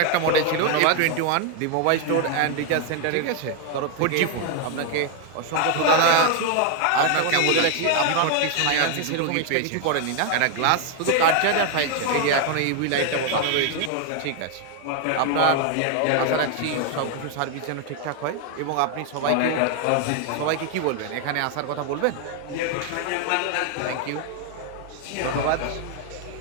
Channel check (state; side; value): different; both; correlation 0.00